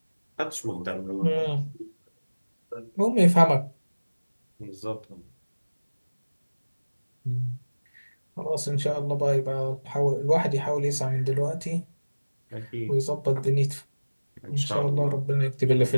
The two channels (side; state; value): both; inverted; correlation -1.00